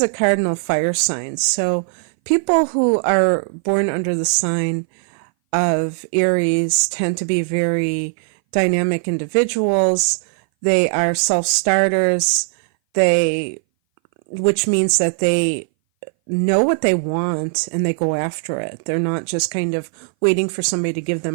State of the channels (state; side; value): silent; left; 60 dB below the other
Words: a cardinal fire sign, so people who are born under the sign of Aries tend to be very dynamic individuals. They are self-starters, which means that they know what they want and they go after it. They're not just kind of waiting for somebody to give